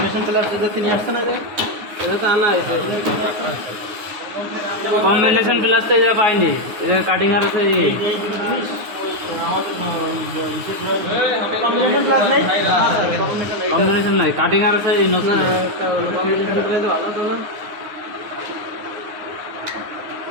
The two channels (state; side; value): late; left; 9.6 ms